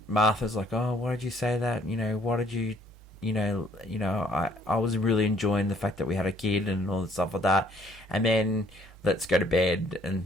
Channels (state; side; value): normal; both; correlation 0.62